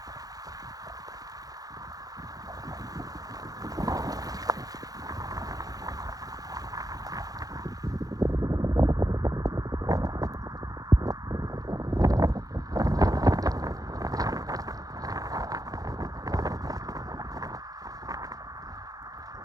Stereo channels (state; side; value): late; left; 0.18 ms